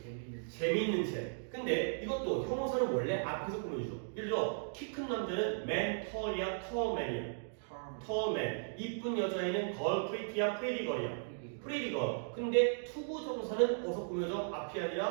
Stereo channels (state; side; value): silent; left; digital silence